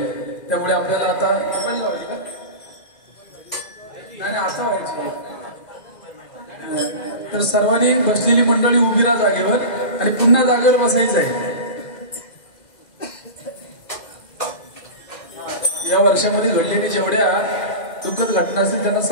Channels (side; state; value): right; late; 2.0 ms